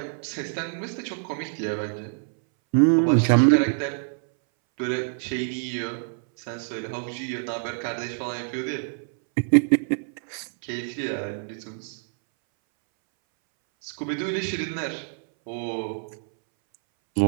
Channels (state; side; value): silent; left; 61 dB below the other